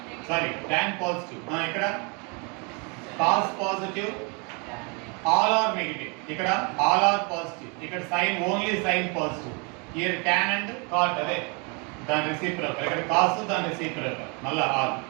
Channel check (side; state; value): left; quieter; 32.8 dB